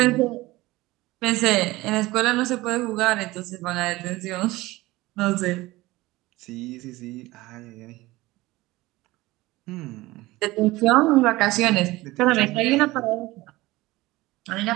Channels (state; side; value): quieter; left; 19.4 dB